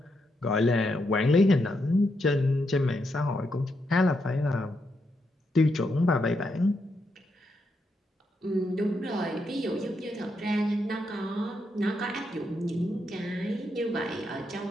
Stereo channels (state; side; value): normal; both; correlation 0.81